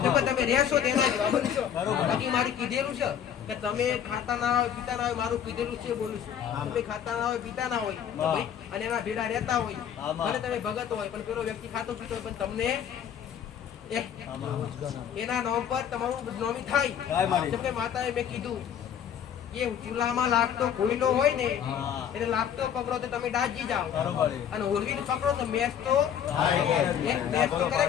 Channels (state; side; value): quieter; right; 9.0 dB